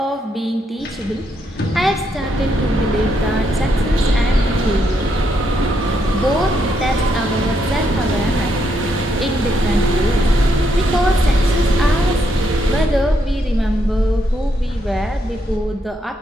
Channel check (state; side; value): normal; both; correlation 0.77